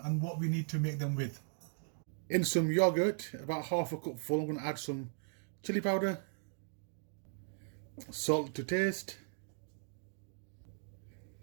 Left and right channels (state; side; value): silent; left; digital silence